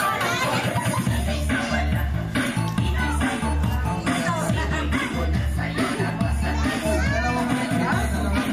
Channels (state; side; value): identical; both; correlation 1.00